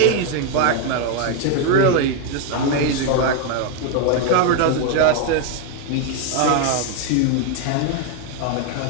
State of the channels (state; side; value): different; both; correlation 0.01